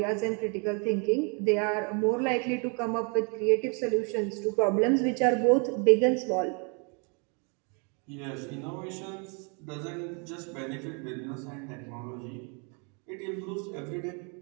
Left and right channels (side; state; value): left; quieter; 36.1 dB